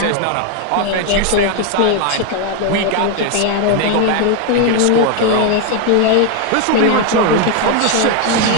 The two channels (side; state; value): both; different; correlation 0.01